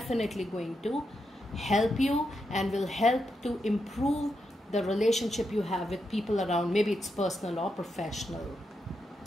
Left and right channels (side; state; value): both; normal; correlation 0.84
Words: going to help you and will help to improve the relationship you have with people around. Maybe it's personal or professional.